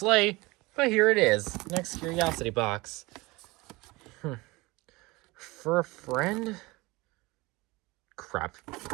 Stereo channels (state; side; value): quieter; left; 22.7 dB